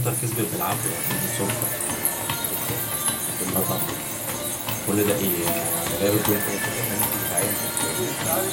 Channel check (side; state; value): both; identical; correlation 1.00